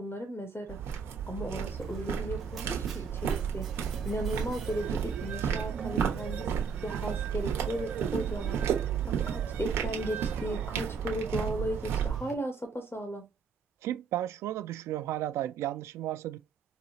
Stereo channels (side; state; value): left; quieter; 5.4 dB